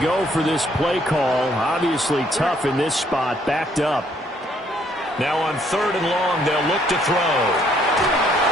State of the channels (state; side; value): normal; both; correlation 0.67